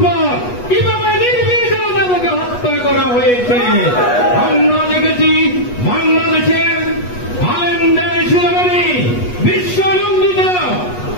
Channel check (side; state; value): right; late; 8.2 ms